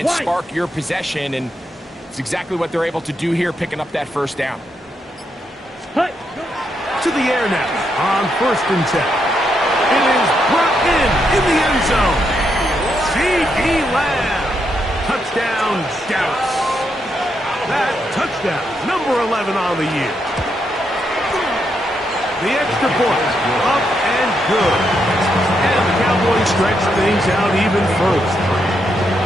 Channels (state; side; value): normal; both; correlation 0.80